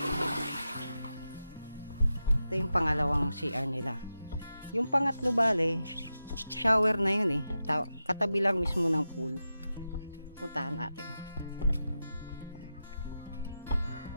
Ito yung pangalawang CR nila. Yung pangatlo bale, shower na yun eh. Katabi lang mismo ng pool. Puntahan natin.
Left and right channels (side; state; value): both; inverted; correlation -0.90